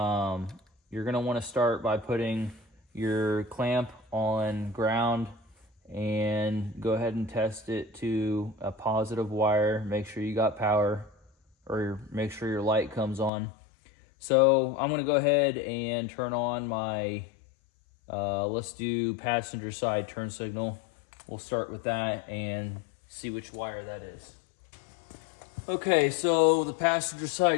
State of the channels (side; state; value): right; drops out; at 13.3 s